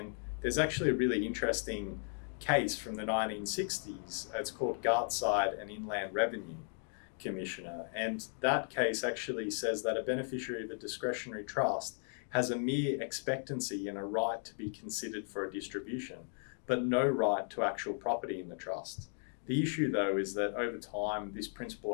there's actually a really interesting case from the 1960s. It's called Gartside and Inland Revenue Commissioner. And that case actually says that a beneficiary of a discretionary trust has a mere expectancy and a right to be considered for a distribution, but no right to actual property in the trust. The issue, though, is that over time, this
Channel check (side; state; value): right; silent; 54 dB below the other